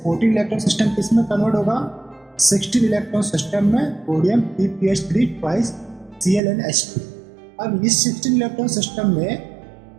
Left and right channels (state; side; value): drops out; left; at 6.4 s